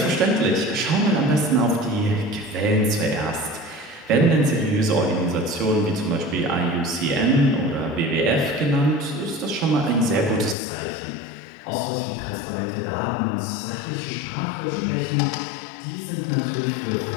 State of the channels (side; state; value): right; drops out; at 10.6 s